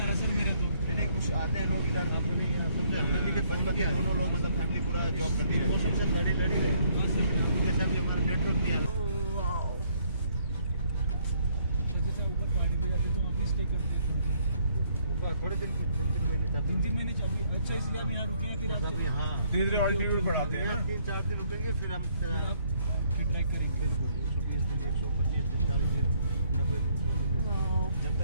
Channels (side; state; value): both; inverted; correlation -0.67